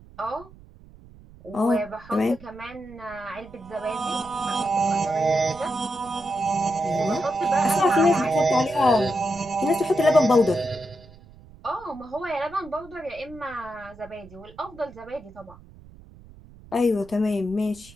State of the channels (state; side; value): noise; right; rumble, 22 dB below the sound